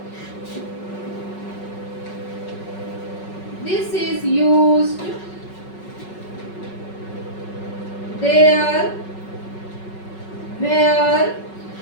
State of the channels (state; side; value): late; right; 5.4 ms